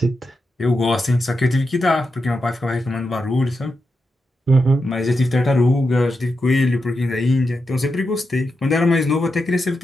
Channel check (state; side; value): normal; both; correlation 0.87